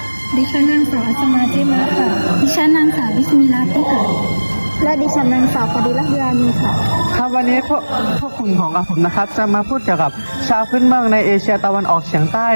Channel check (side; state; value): both; inverted; correlation -1.00